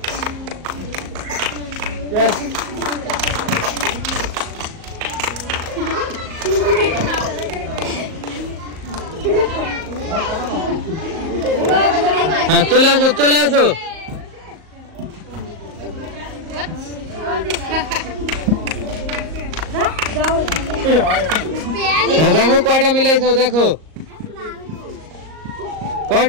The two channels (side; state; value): left; late; 38 ms